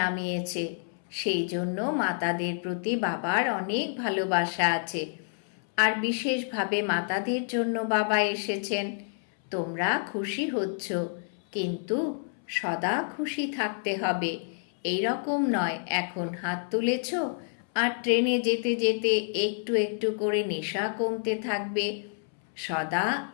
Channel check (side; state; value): right; silent; 59 dB below the other